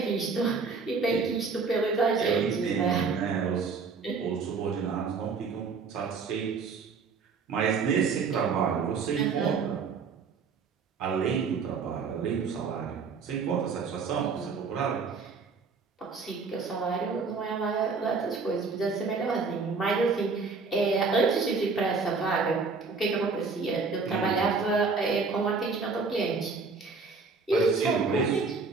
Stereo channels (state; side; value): quieter; left; 4.8 dB